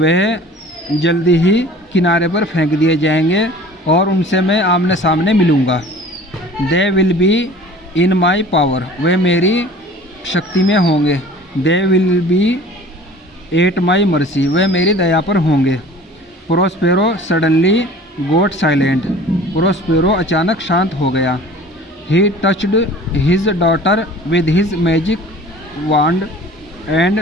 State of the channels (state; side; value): normal; both; correlation 0.45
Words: जल्दी ही किनारे पर फेंक दिए जाएंगे और उनसे मैं आमने सामने मिलूँगा। They will be in my power, वे मेरी शक्ति में होंगे। They will be at my mercy, वे मेरी दया पर होंगे। Prospero suddenly got silent, Prospero अचानक शांत हो गया। He touched his daughter with his magic wand and